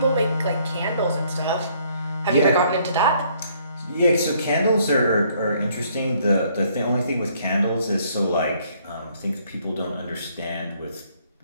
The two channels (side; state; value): both; inverted; correlation -0.65